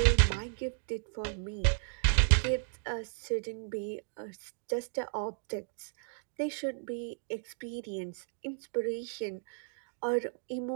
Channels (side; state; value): left; silent; digital silence